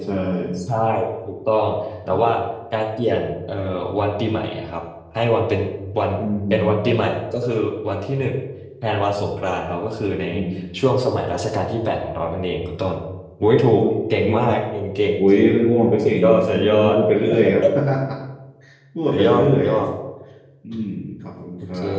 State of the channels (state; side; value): identical; both; correlation 1.00